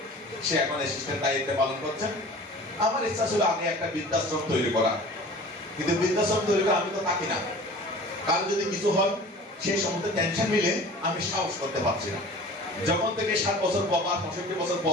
সে এখন অ্যাসিস্ট্যান্ট দায়িত্ব পালন করছেন। আমার ইচ্ছা ছিল আগে একটা বৃদ্ধাশ্রম তৈরি করা, কিন্তু বৃদ্ধাশ্রম তৈরি করে আমি তো থাকি না, কারো যদি কিছু হয় সেই সমস্ত টেনশন মিলে আমি সাহস করতে পারছি না। যখন থেকে 7 বছর পর বা 65 বছর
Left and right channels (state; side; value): normal; both; correlation 0.42